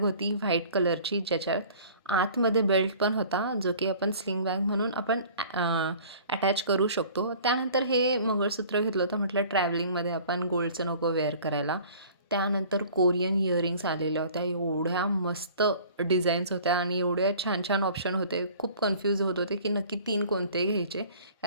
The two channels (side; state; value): both; inverted; correlation -0.48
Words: व्हाईट कलरची, ज्याच्यात आतमध्ये बेल्ट पण होता, जो की आपण स्लिंग बॅग म्हणून आपण अटॅच करू शकतो. त्यानंतर हे मंगळसूत्र घेतलं होतं, म्हटलं ट्रॅव्हलिंगमध्ये आपण गोल्डचं नको वेअर करायला. त्यानंतर कोरियन इयरिंग्स आलेल्या होत्या, एवढ्या मस्त डिझाईन्स होत्या आणि एवढ्या छान छान ऑप्शन होते. खूप कन्फ्यूज होत होते की नक्की 3 कोणते घ्यायचे,